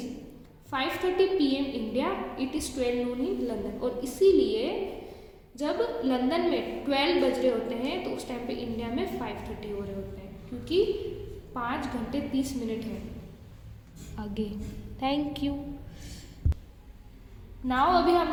5:30 PM India, it is 12 Noon in London, और इसीलिए जब लंदन में 12 बज रहे होते हैं तो उस टाइम पे इंडिया में 5:30 हो रहे होते हैं, क्योंकि 5 घंटे 30 मिनट है आगे। Thank you. नाउ अभी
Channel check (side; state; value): both; identical; correlation 1.00